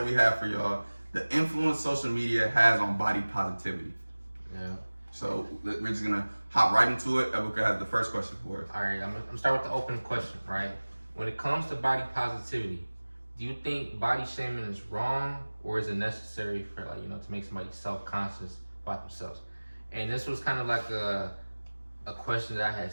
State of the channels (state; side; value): inverted; both; correlation -1.00